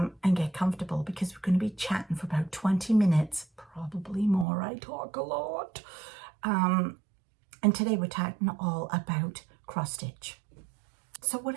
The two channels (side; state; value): left; drops out; at 4.5 s